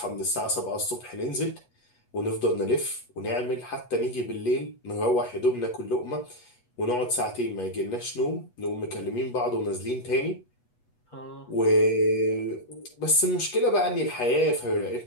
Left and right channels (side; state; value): right; late; 8.2 ms